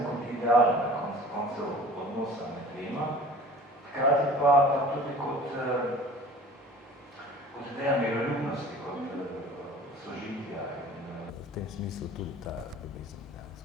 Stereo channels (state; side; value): normal; both; correlation 0.44